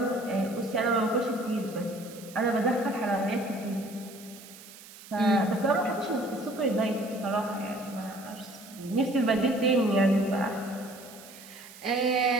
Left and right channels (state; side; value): noise; right; hiss, 18 dB below the sound